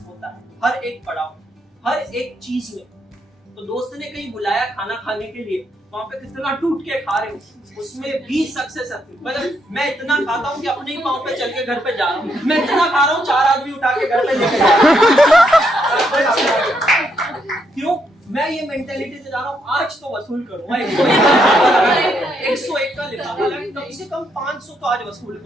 होता है. हर एक पड़ाव, हर एक चीज में. तो दोस्त ने कहीं बुलाया खाना खाने के लिए, वहां पे कितना टूट के खा रहे हो, उसमें भी सक्सेस है. मतलब मैं इतना खाता हूँ कि अपने ही पाँव पे चल के घर पे जा रहा हूँ. मैं इतना खा रहा हूँ 4 आदमी उठा के घर पे लेके जा रहा हूँ. क्यों? मैं ये मेंटालिटी से जा रहा हूँ, आज तो वसूल करूंगा. 101 का लिफाफा लगा, कम से कम 500 तो आज वसूल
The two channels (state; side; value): normal; both; correlation 0.77